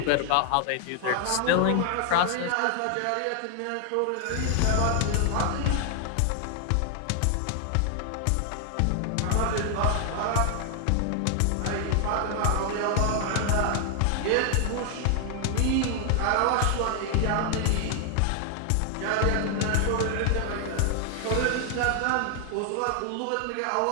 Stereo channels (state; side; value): different; both; correlation 0.00